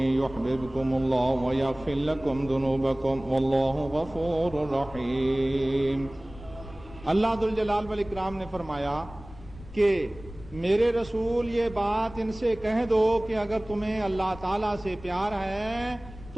یحببکم اللہ ویغفر لکم ذنوبکم واللہ غفور رحیم۔ اللہ ذوالجلال والاکرام نے فرمایا کہ میرے رسول یہ بات ان سے کہہ دو کہ اگر تمہیں اللہ تعالیٰ سے پیار ہے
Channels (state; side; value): noise; left; rumble, 17 dB below the sound